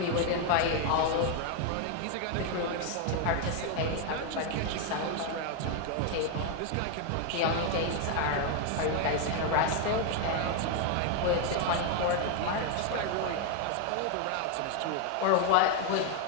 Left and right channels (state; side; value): different; both; correlation 0.01